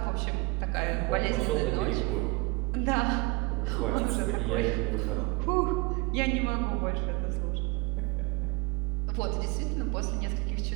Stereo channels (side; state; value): left; quieter; 24.9 dB